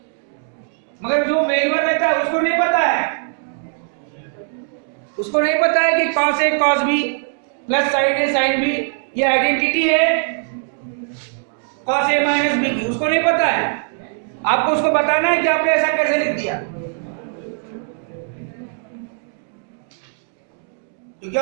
मगर जो मेलवर रहता है उसको नहीं पता है, उसको नहीं पता है कि cos a cos b plus sign a sin b ये आइडेंटिटी है cos a माइनस b की, उसको नहीं पता है, आपको उसको बताना है कि आपने ऐसा कैसे लिख दिया, क्योंकि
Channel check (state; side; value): silent; left; 66 dB below the other